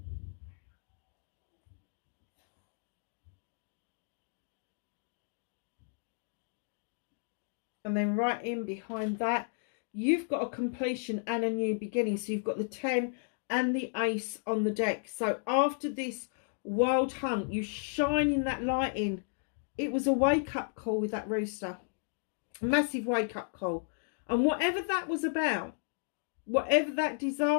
And then right in behind that, you've got a completion and a new beginning. So you've got the 10 and the ace on the deck. So after this wild hunt, you shining that light in. It was a wake-up call with that rooster. A massive wake-up call. And whatever that was about, whatever that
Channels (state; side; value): silent; right; digital silence